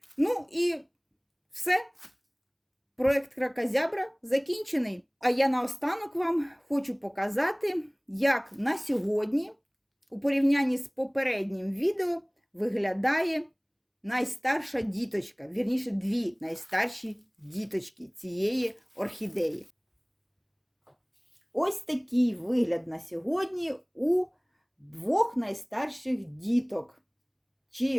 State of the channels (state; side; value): identical; both; correlation 1.00